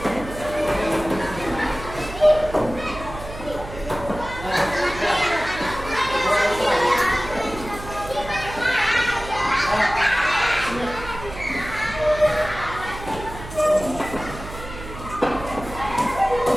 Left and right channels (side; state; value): right; noise; hum, 12 dB below the sound